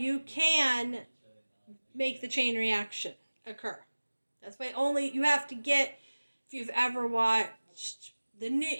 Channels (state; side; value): inverted; both; correlation -1.00